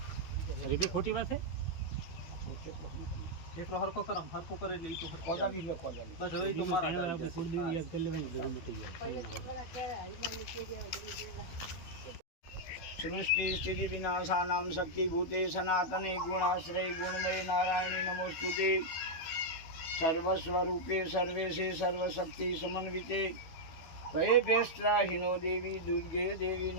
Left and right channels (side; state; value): right; late; 12 ms